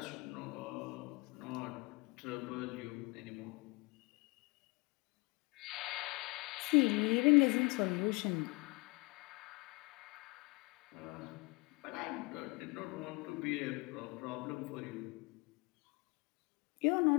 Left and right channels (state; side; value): quieter; right; 27.5 dB